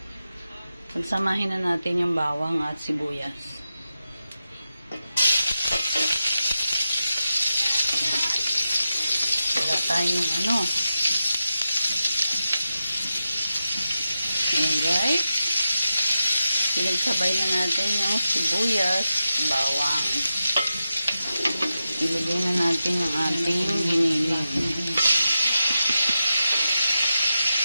Pagsamahin na natin yung bawang at sibuyas. Wala tayong Ayan guys. Pinagsabay na natin yung sibuyas, bawang. Ilagay na natin yung ating giniling.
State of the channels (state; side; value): inverted; both; correlation -0.90